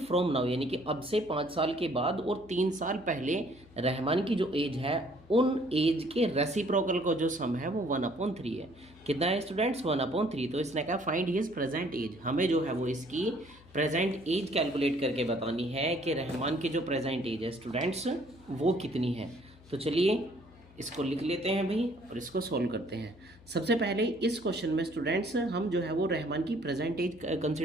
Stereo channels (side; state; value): left; noise; hum, 24 dB below the sound